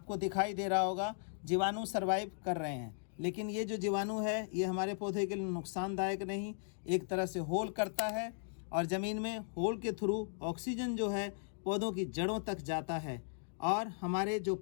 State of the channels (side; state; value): right; silent; digital silence